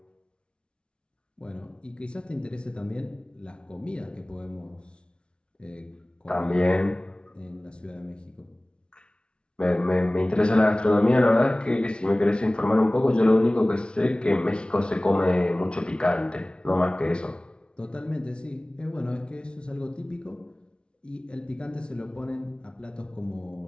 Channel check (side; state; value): right; late; 0.056 ms